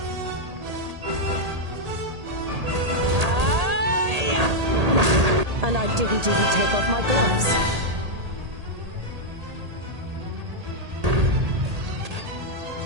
And I didn't even take off my gloves.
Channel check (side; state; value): left; late; 1.8 ms